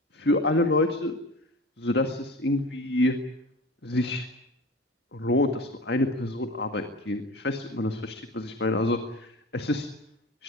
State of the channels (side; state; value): both; normal; correlation 0.35